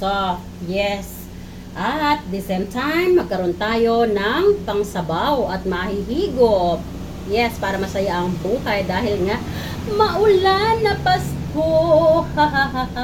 Yes. At the same time, magkaroon tayo ng pangsabaw at mahihigop. Yes, para masaya ang buhay dahil nga maulan na Pasko.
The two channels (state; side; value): identical; both; correlation 1.00